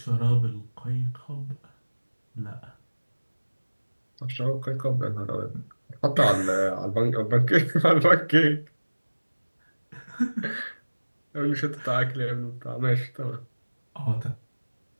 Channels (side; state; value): both; inverted; correlation -1.00